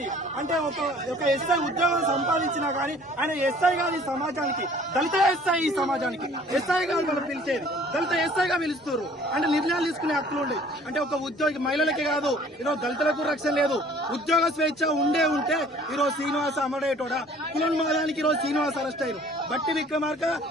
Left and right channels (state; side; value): normal; both; correlation 0.53